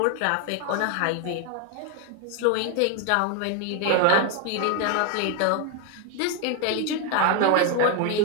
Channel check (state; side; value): different; both; correlation 0.01